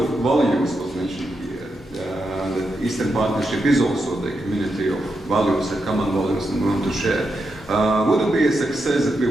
of values was mentioned here, Eastern Partnership is also the community of values and common values that we want to share. Would it be a success if we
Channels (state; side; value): normal; both; correlation 0.85